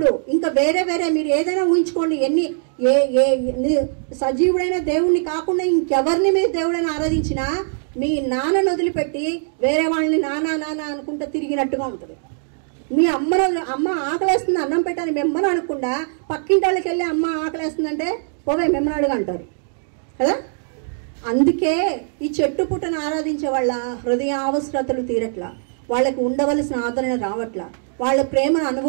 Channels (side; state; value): left; silent; digital silence